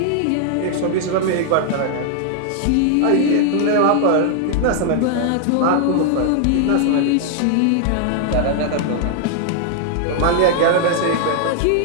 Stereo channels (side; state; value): both; different; correlation 0.00